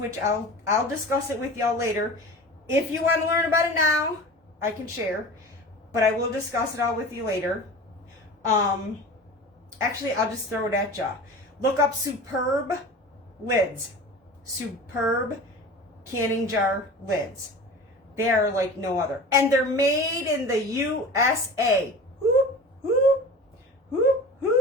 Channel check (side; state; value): both; normal; correlation 0.36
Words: I'll discuss it with y'all later. If you want to learn about it now, I can share, but I will discuss it all with you later. Actually, I'll just throw it at y'all. Look up Superb lids. Superb canning jar lids. They are like no other. And they're made in the USA. Whoop, whoop, whoop,